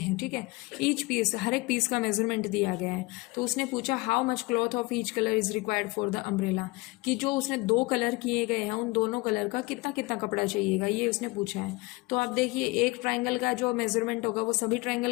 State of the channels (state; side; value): quieter; right; 24.0 dB